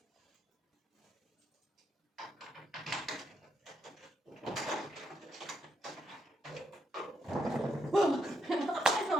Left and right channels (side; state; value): both; normal; correlation 0.78